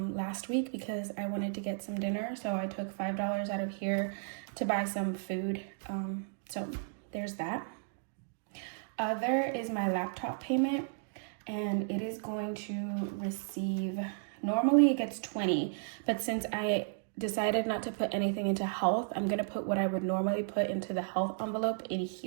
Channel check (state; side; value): silent; left; digital silence